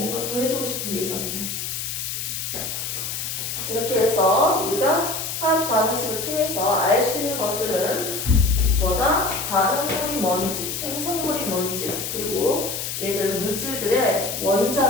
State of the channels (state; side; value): noise; left; hiss, 4 dB below the sound